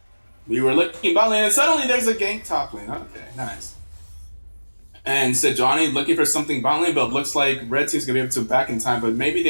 We were looking bot lane and suddenly there's a gank top lane. Okay, nice. And Sejuani looking for something bot lane, but looks like red team's gonna be able to back in time, but maybe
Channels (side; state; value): both; inverted; correlation -1.00